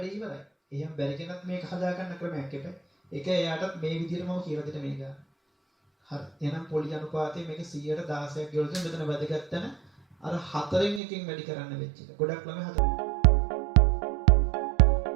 ඉවරයි. එහෙනම් බැරි කෙනත් මේක හදාගන්න ක්‍රමයක් එපා. ඒක එයාටත් මේ විදිහටම කියලා දෙන්න මේක. හරි. එහෙනම් පොලි අනුපාතය මේක 100ට 16ක් ගෙවල තියෙන මෙතන වැදගත් තැන අර 4න් එකකින් වැඩි කරන්න වෙච්ච එක. ගොඩක් ළමයි 4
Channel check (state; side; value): drops out; left; at 11.0 s